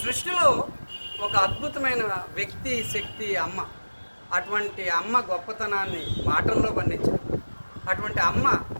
సృష్టిలో ఒక అద్భుతమైన వ్యక్తి శక్తి అమ్మ. అటువంటి అమ్మ గొప్పతనాన్ని మాటల్లో వర్ణించారు. అటువంటి అమ్మ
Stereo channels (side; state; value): both; inverted; correlation -1.00